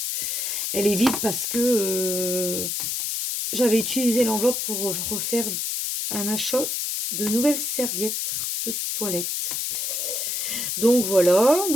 Elle est vide parce que j'avais utilisé l'enveloppe pour refaire un achat de nouvelles serviettes de toilette. Donc, voilà.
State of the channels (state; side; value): noise; left; hiss, 1 dB below the sound